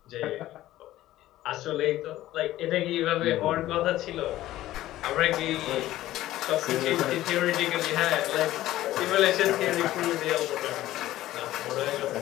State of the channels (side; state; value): right; quieter; 14.9 dB